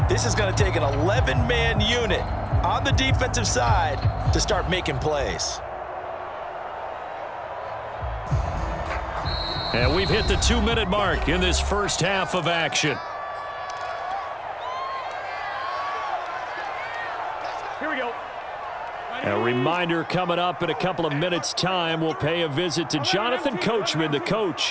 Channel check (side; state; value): both; identical; correlation 1.00